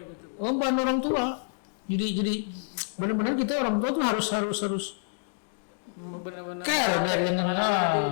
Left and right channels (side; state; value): right; silent; digital silence